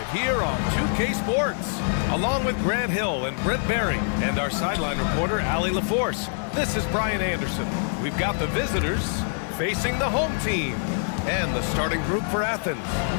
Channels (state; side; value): silent; right; 62 dB below the other